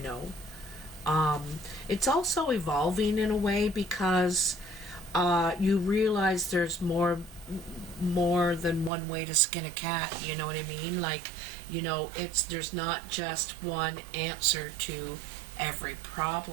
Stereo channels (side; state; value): left; drops out; at 8.9 s